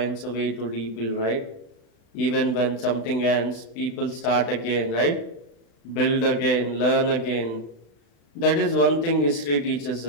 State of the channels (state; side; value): late; right; 35 ms